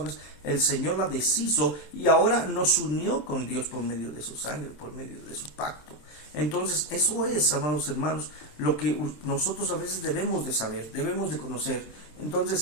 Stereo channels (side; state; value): right; late; 27 ms